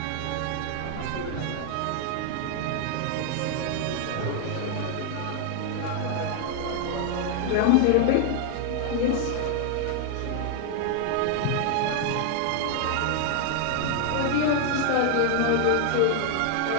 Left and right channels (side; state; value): both; different; correlation 0.00